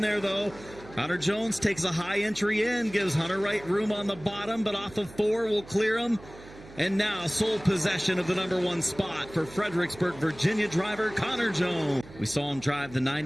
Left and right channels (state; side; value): noise; right; hum, 19 dB below the sound